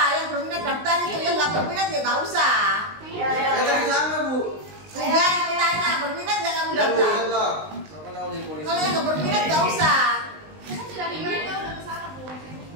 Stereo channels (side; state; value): left; late; 19 ms